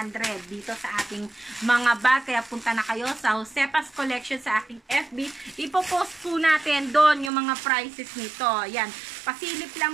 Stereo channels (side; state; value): left; drops out; at 7.3 s